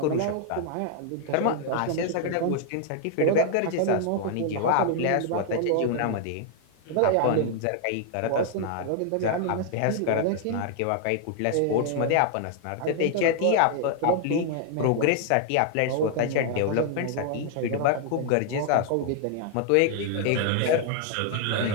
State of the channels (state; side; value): different; both; correlation 0.00